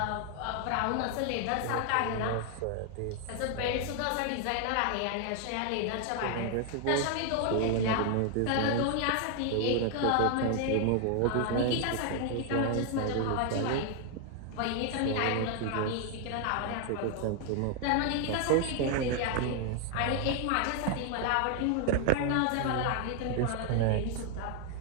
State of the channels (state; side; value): different; both; correlation 0.00